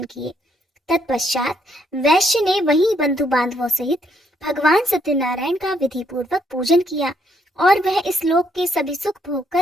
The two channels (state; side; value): normal; both; correlation 0.72